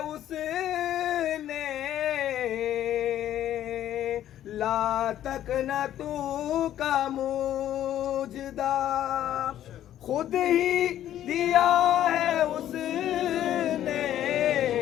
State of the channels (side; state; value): right; quieter; 11.8 dB